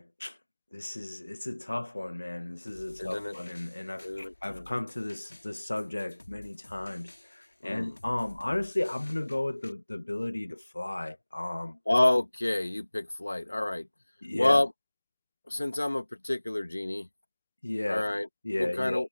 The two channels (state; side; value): inverted; both; correlation -1.00